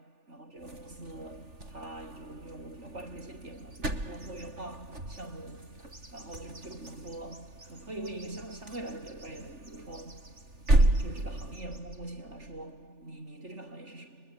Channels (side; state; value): left; late; 3.4 ms